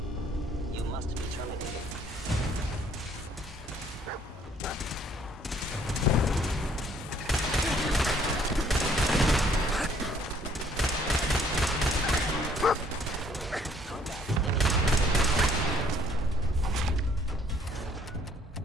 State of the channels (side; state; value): both; normal; correlation 0.62